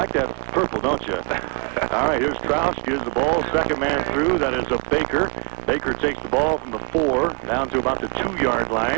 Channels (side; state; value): left; quieter; 34.6 dB